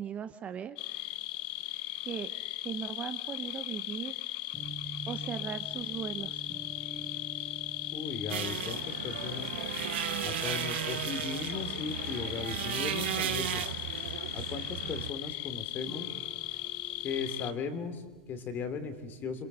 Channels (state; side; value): normal; both; correlation 0.20